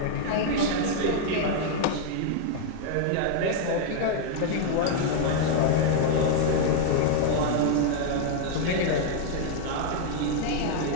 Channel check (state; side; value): different; both; correlation 0.00